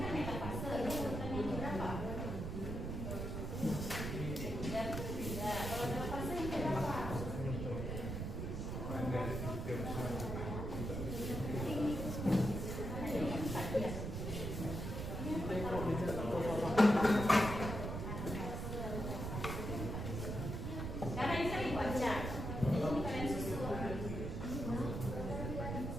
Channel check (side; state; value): right; noise; rumble, 4 dB below the sound